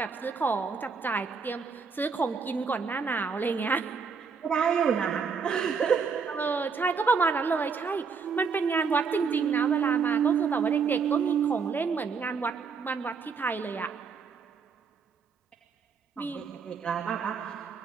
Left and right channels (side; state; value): left; quieter; 5.6 dB